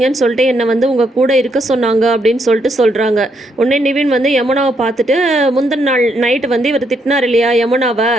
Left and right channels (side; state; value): both; normal; correlation 0.75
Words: சொல்லிட்டு என்னை வந்து உங்கள் கூட இருக்க சொன்னாங்க அப்படின்னு சொல்லிட்டு சொல்கிறாங்க. உடனே நிவின் வந்து யமுனாவை பார்த்துட்டு, முந்தின நாள் நைட்டு வந்து இவர் திட்டினார் இல்லையா யமுனாவை,